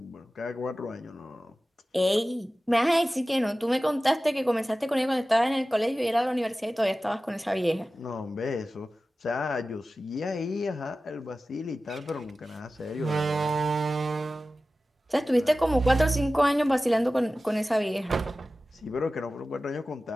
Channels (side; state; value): both; normal; correlation 0.95